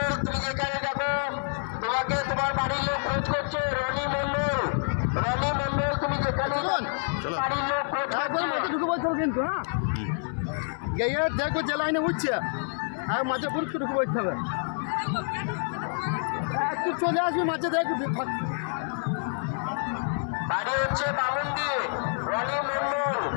তুমি যেখানে যাবো তোমাকে তোমার বাড়ির লোক খোঁজ করছে। রনি মন্ডল তুমি যেখানে বাড়ির লোক খোঁজ করছে। ঢুকে বলতে হবে কিন্তু, হ্যাঁ গিয়ে দেখো যে লাইনে উঠছে আর মাঝে পুরুষ ঢুকে বলতে হবে। একটু চলে আসবি মাঝে দেখ। বাড়ি হচ্ছে বামুনদি, রনি মন্ডল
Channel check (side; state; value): right; silent; digital silence